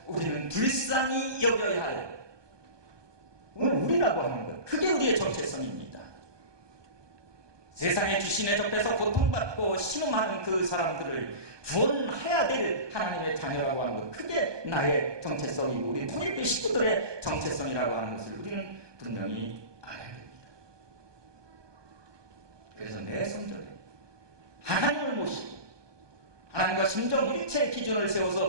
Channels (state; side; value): late; left; 1.2 ms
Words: 우리는 불쌍히 여겨야 할, 오늘 우리라고 하는 것, 그게 우리의 정체성입니다. 세상의 귀신에 접해서 고통받고 신음하는 그 사람들을 구원해야 될 하나님의 자녀라고 하는 것, 그게 나의 정체성이고 우리 통일교 식구들의 정체성이라고 하는 것을 우리는 분명히 알아야 됩니다. 그래서 내 성전에 하나님을 모시고 하나님과 심정일체의 기준을